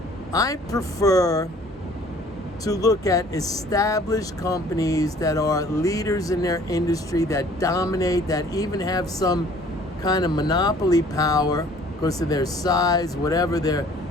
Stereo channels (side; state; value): both; normal; correlation 0.54